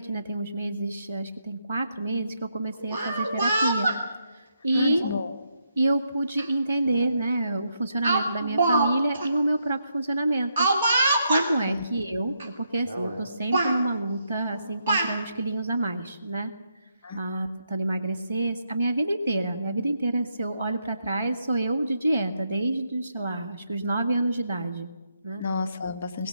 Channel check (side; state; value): both; inverted; correlation -0.79